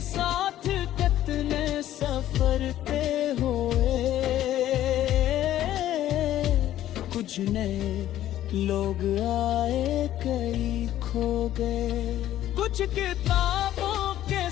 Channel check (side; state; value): right; quieter; 12.8 dB